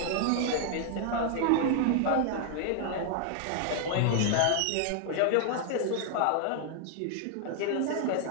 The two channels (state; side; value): different; both; correlation 0.00